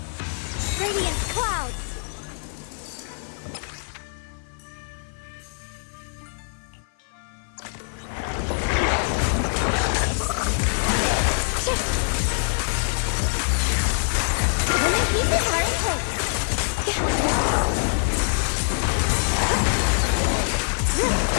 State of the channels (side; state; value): right; silent; 56 dB below the other